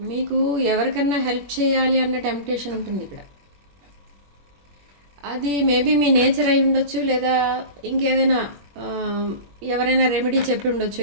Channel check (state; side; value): late; left; 21 ms